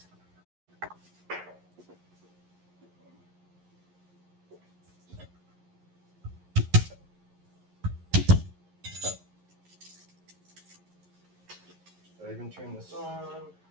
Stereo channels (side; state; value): left; late; 11 ms